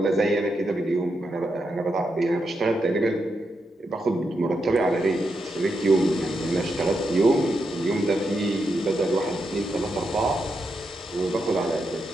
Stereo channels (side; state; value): both; normal; correlation 0.84